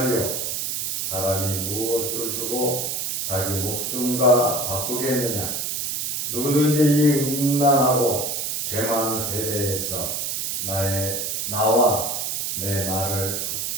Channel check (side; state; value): right; noise; hiss, 1 dB below the sound